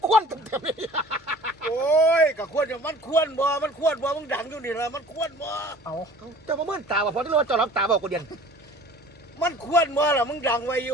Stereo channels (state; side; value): normal; both; correlation 0.47